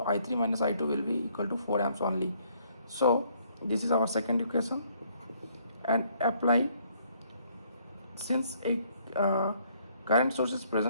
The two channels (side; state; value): both; inverted; correlation -0.66